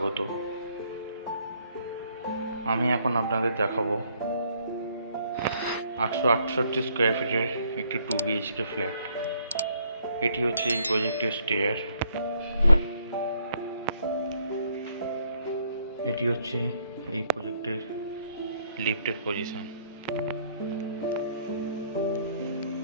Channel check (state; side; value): inverted; both; correlation -0.67